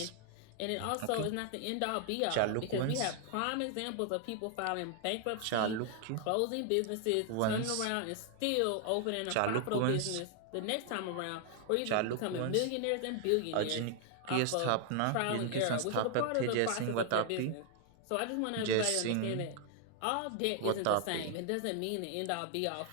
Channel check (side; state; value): both; different; correlation 0.00